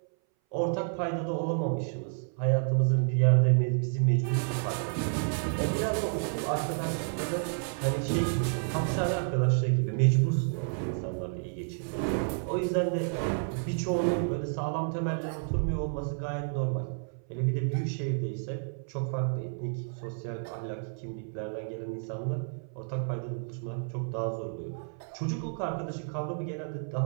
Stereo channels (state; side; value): silent; left; 58 dB below the other